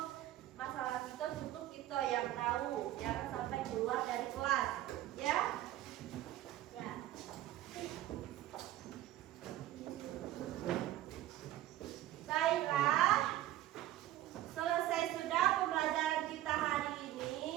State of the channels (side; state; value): left; quieter; 13.9 dB